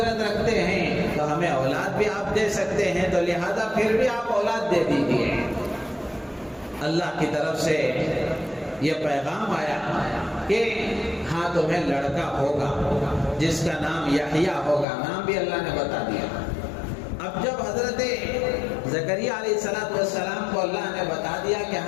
رکھتے ہیں تو ہمیں اولاد بھی آپ دے سکتے ہیں، تو لہذا پھر بھی آپ اولاد دے دیجیے۔ اللہ کی طرف سے یہ پیغام آیا کہ ہاں تمہیں لڑکا ہوگا جس کا نام یحییٰ ہوگا، نام بھی اللہ نے بتا دیا۔ اب جب حضرت زکریا علیہ السلام کو اللہ نے بتا دیا کہ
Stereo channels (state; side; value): drops out; right; at 14.9 s